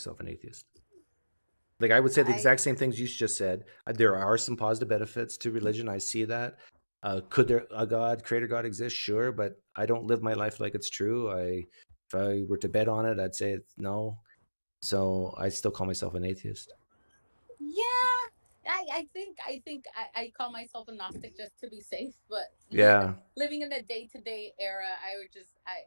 an atheist. Like I would say the exact same things you just said. There are some positive benefits to religion. I see that. Could there a God, creator God exist? Sure, but I don't live my life like it's true. If I were to bet on it, I'd say no. So I still call myself an atheist. Yeah. I think I call myself a Gnostic just to be safe, but yeah, living in a day-to-day era,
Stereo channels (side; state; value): both; inverted; correlation -1.00